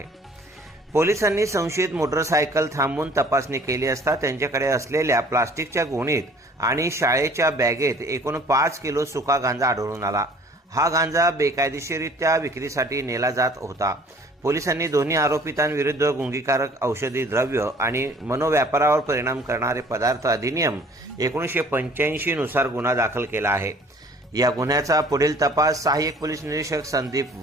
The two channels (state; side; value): normal; both; correlation 0.53